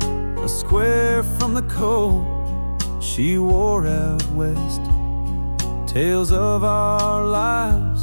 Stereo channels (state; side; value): inverted; both; correlation -1.00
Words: a square from the coat she wore out west. Tales of our